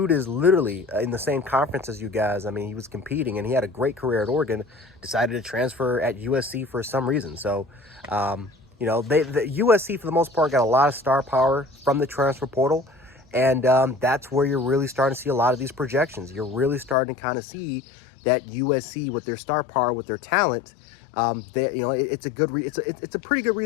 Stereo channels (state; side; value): drops out; right; at 16.9 s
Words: is literally in the same conference as you guys. He was competing, and he had a great career at Oregon, decided to transfer at USC for some reason. So, the USC, for the most part, got a lot of star power from the transfer portal. And that's where you're really starting to see a lot of these projections. You're really starting to kind of see that USC, with their star power, with their talent, it's a pretty good